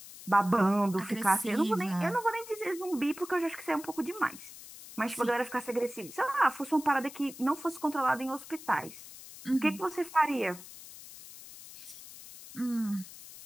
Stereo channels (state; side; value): noise; left; hiss, 16 dB below the sound